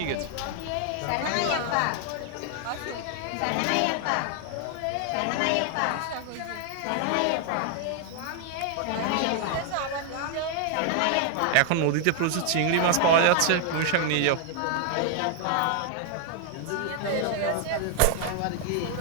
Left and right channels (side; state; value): both; different; correlation 0.00